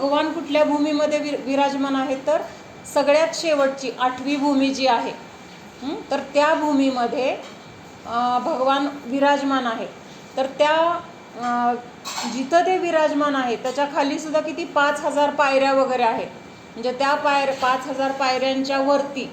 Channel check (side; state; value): both; identical; correlation 1.00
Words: कुठल्या भूमीमध्ये विराजमान आहेत, तर सगळ्यात शेवटची 8वी भूमी जी आहे तर त्या भूमीमध्ये भगवान विराजमान आहे. तर त्या जिथं ते विराजमान आहे त्याच्या खाली सुद्धा किती 5000 पायऱ्या वगैरे आहेत. म्हणजे त्या 5000 पायऱ्यांच्या वरती